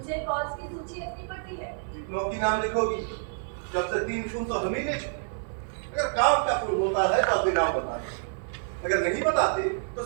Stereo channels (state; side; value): silent; left; digital silence